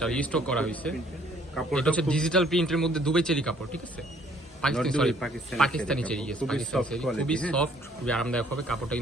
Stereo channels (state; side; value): normal; both; correlation 0.61